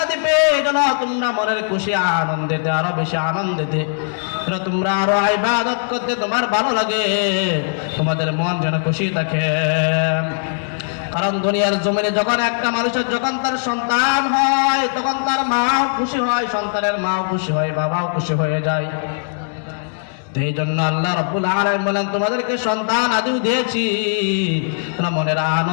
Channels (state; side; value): silent; right; digital silence